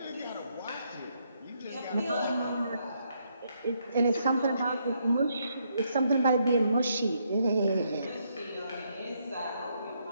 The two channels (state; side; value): inverted; both; correlation -0.75